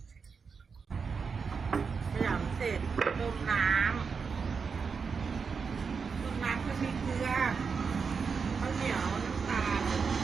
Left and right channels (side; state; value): left; quieter; 5.5 dB